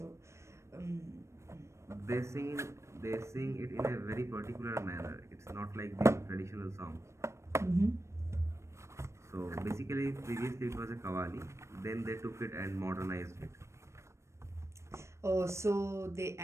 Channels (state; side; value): late; left; 0.13 ms